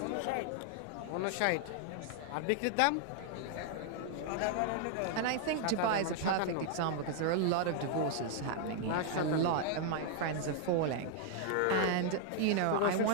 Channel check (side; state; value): both; different; correlation 0.00